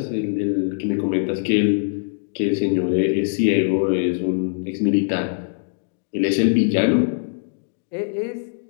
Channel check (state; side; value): silent; right; digital silence